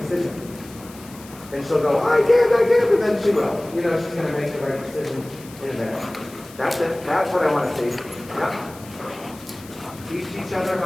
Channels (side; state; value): left; noise; hiss, 20 dB below the sound